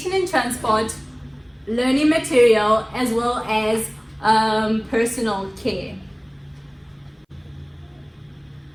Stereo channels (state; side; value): identical; both; correlation 1.00